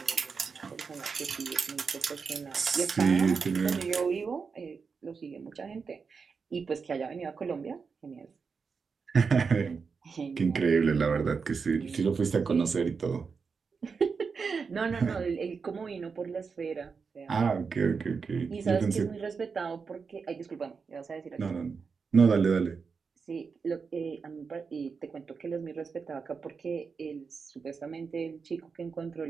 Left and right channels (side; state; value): left; quieter; 5.3 dB